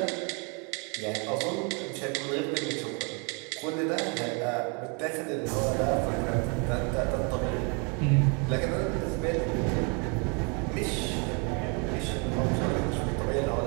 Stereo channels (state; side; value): quieter; left; 34.2 dB